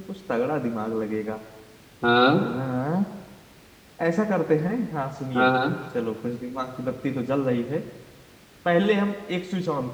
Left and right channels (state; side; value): identical; both; correlation 1.00